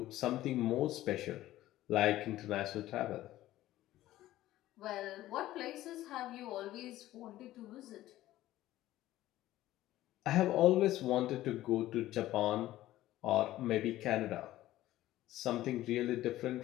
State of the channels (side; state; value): right; quieter; 15.0 dB